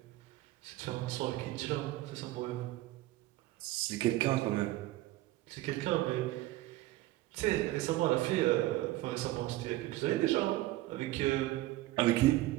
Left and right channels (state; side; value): quieter; left; 17.2 dB